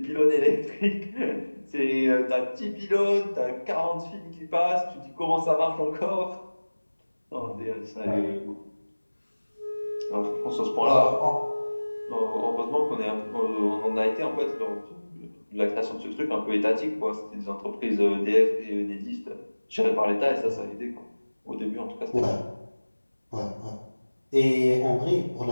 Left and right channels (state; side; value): inverted; both; correlation -1.00